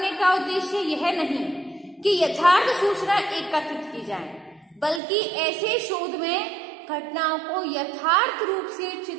का उद्देश्य यह नहीं कि यथार्थ सूचना एकत्रित की जाए, बल्कि ऐसे शोध में घटनाओं को यथार्थ रूप से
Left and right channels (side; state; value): left; drops out; at 5.0 s